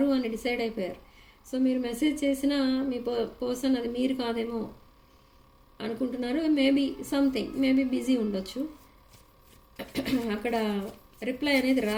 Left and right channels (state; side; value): identical; both; correlation 1.00